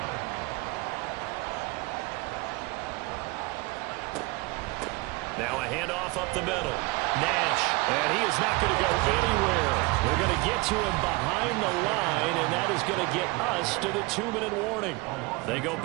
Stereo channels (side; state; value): left; quieter; 24.6 dB